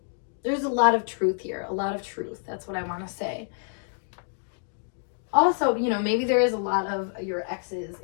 There's a lot of truth here, a lot of truth. That's what I want to say. Also, you know, maybe there is a lot of your exes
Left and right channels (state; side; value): silent; right; digital silence